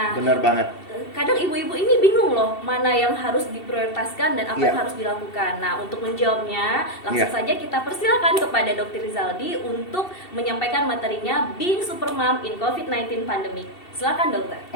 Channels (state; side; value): late; right; 2.7 ms